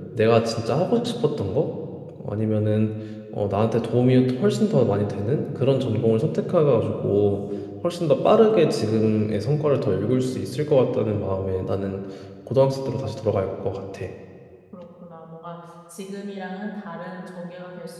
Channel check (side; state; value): both; identical; correlation 1.00